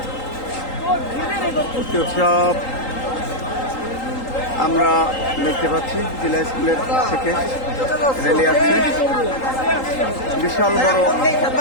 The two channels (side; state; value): right; late; 3.8 ms